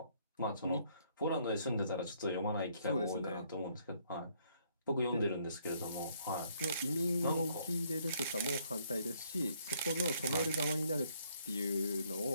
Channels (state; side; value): inverted; both; correlation -0.67